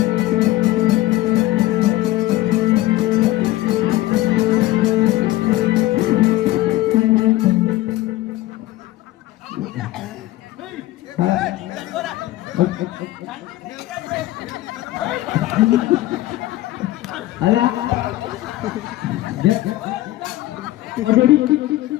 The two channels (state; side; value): quieter; right; 16.5 dB